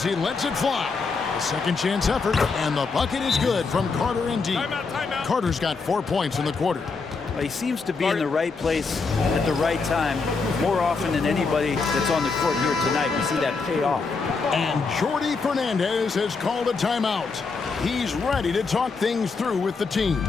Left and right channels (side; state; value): right; quieter; 4.5 dB